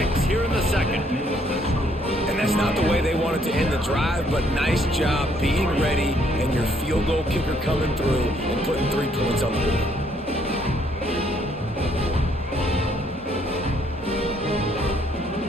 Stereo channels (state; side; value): normal; both; correlation 0.68